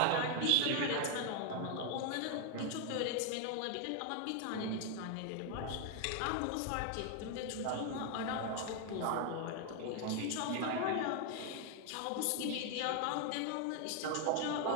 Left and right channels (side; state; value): both; different; correlation 0.00